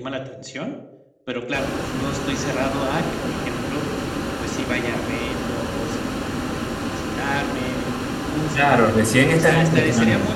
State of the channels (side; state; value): both; identical; correlation 1.00